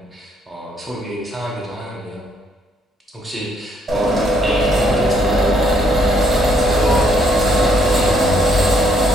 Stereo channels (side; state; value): both; normal; correlation 0.69